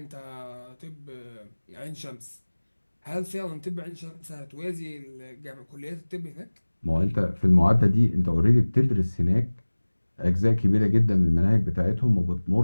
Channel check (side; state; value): both; inverted; correlation -1.00